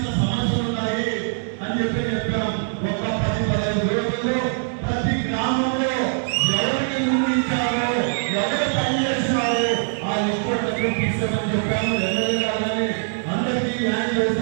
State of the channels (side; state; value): left; silent; digital silence